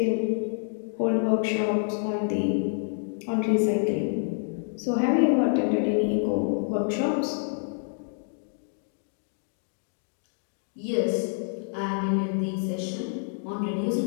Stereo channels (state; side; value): silent; right; digital silence